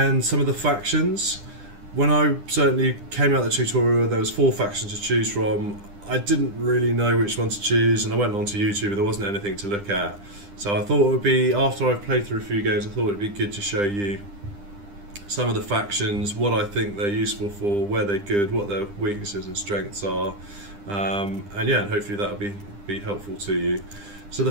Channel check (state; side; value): late; left; 9.9 ms